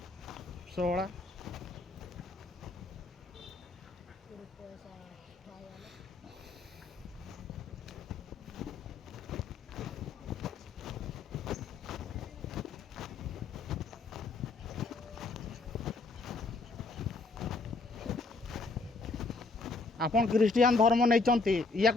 सोड़ा आपन क्रिस्टियन धर्म नहीं या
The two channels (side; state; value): right; quieter; 3.8 dB